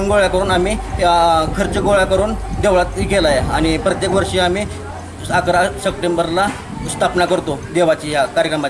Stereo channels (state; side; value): identical; both; correlation 1.00